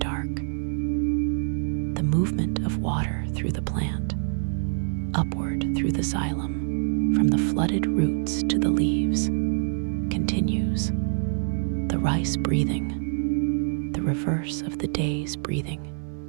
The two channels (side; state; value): left; silent; 59 dB below the other